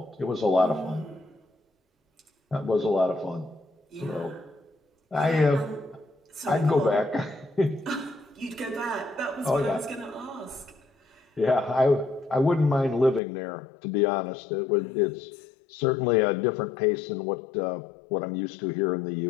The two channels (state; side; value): drops out; right; at 13.2 s